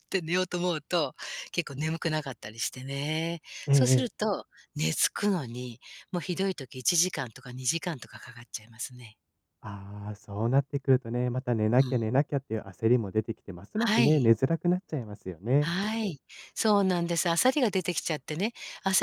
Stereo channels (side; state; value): both; identical; correlation 1.00